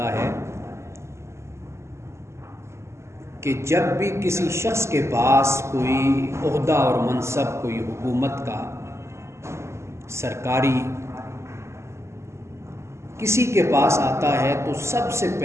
ہے کہ جب بھی کسی شخص کے پاس کوئی عہدہ اور منصب، کوئی حکومت کا سرکاری کسی کے پاس آتا ہے، تو سب سے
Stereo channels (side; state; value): left; late; 0.13 ms